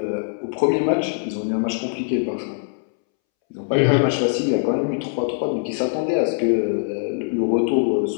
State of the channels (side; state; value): right; silent; 64 dB below the other